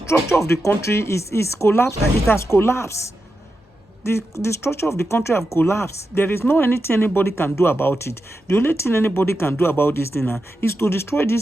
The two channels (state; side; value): normal; both; correlation 0.89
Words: of the country is collapsed. It has collapsed. The structure of the country have collapsed. There is no anything anybody can do about it. The only thing anybody can do about this thing is to destroy